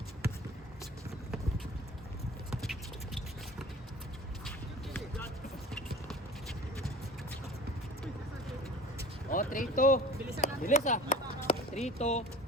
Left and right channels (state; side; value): normal; both; correlation 0.41